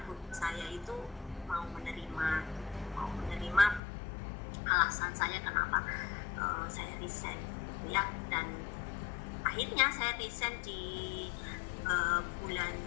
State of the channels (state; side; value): drops out; right; at 3.8 s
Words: ibu saya itu mau menerima alasan saya kenapa saya resign gitu ya. Dan akhirnya saya resign di bulan